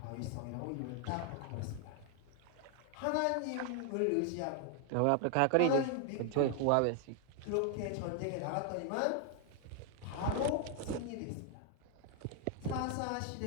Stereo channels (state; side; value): different; both; correlation 0.00